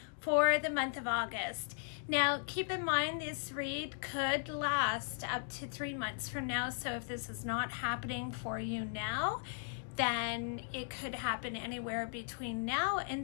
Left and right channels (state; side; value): silent; right; digital silence